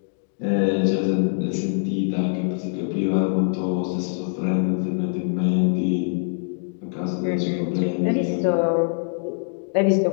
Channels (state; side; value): silent; right; digital silence